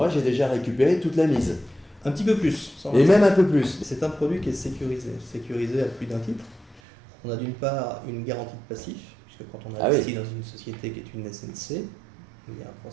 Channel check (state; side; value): drops out; left; at 6.8 s